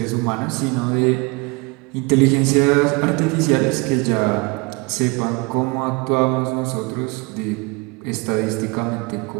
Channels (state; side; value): quieter; left; 27.6 dB